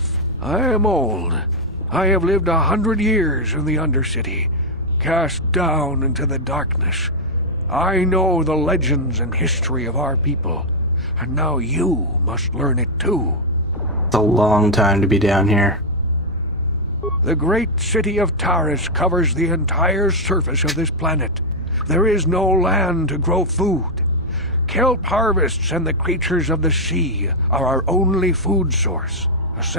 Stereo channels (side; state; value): both; normal; correlation 0.00